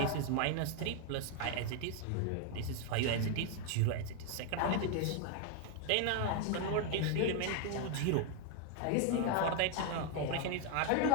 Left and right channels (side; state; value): both; different; correlation 0.01